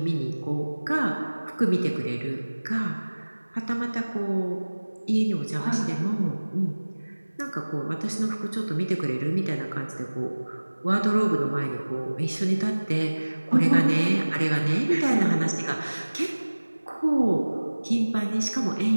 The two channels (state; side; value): inverted; both; correlation -1.00